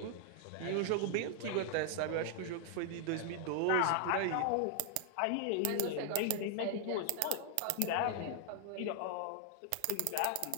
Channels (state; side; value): different; both; correlation -0.01